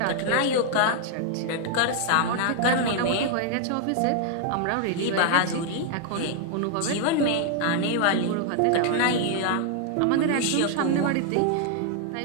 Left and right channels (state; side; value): different; both; correlation 0.00